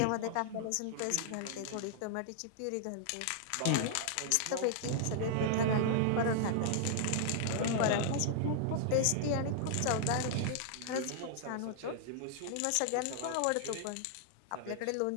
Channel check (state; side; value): different; both; correlation -0.01